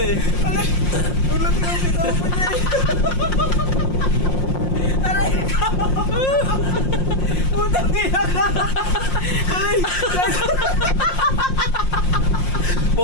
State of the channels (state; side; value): late; right; 5.6 ms